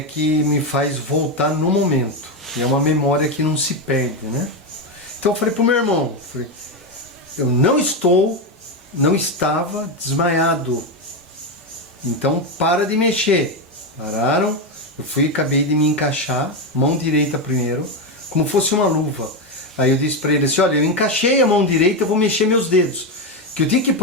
me faz voltar no momento. E é uma memória que não se perde, né? Então eu falei pro meu irmão, eu não estava desmaiado. Então para de mexer. Pararam, eu acabei de me encaixar, mão direita primeiro, como fosse uma luva. Aí eu disse para ele assim, olha, eu encaixei a mão direita, eu vou mexer meus dedos. Que eu tinha que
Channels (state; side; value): normal; both; correlation 0.10